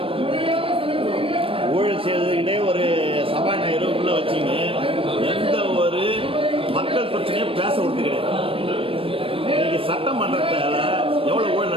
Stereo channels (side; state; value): left; late; 0.26 ms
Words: ஊழல் செய்வதற்கிட்டே ஒரு சபாநாயகர் உள்ள வச்சிங்க எந்த ஒரு மக்கள் பிரச்சனையும் பேச விட்டு கிடையாது. இன்னைக்கு சட்டமன்றத்தில் எவ்வளவு ஊழல்